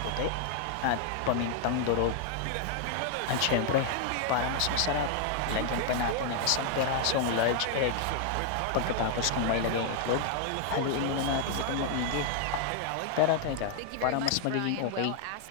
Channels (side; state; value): both; different; correlation 0.00